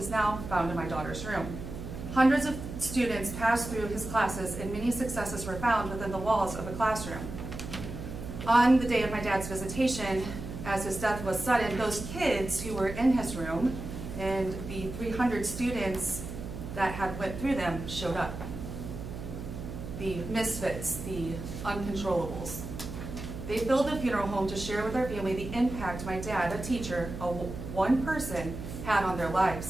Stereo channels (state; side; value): noise; right; hum, 9 dB below the sound